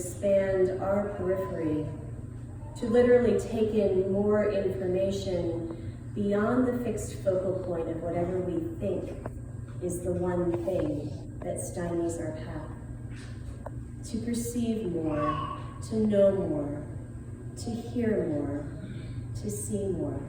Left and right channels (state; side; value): identical; both; correlation 1.00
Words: our periphery, to literally take in more information beyond the fixed focal point of whatever we think is the one thing that stymies our path. To perceive more, to know more, to hear more, to see more,